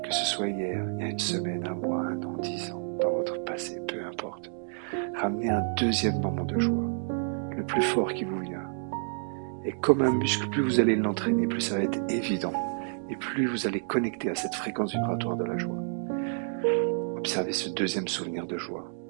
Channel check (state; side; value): silent; left; digital silence